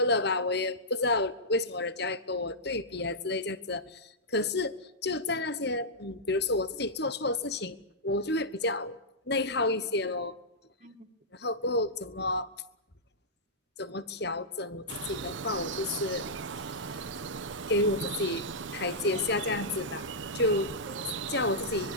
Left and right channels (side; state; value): both; normal; correlation -0.12